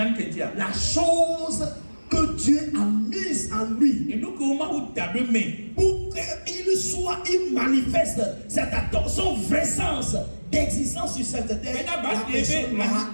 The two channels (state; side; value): inverted; both; correlation -1.00